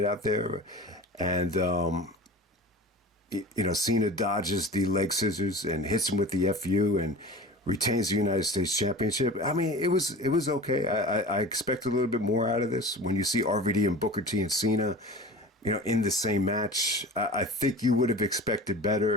out there, and Cena dodges the leg scissors and hits him with the FU and retains the United States Championship. I mean, it was okay. I expect a little bit more out of this. When you see RVD and Booker T and Cena, in the same match, I think you would have expected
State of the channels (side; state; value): both; normal; correlation 0.36